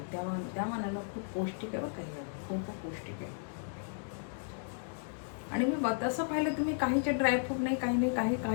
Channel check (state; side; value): silent; right; digital silence